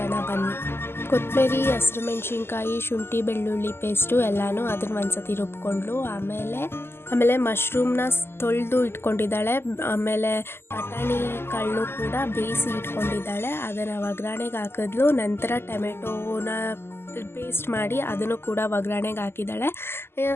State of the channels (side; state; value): right; late; 0.12 ms